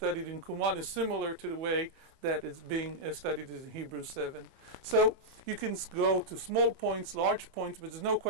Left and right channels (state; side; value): late; left; 28 ms